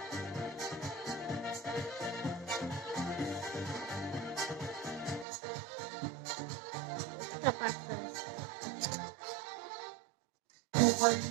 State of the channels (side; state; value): left; drops out; at 5.2 s